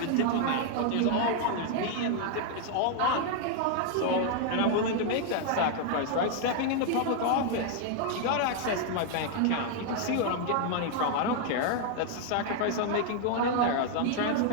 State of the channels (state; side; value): different; both; correlation 0.00